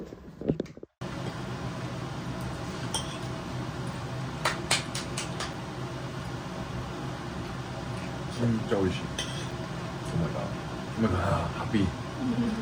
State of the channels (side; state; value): both; identical; correlation 1.00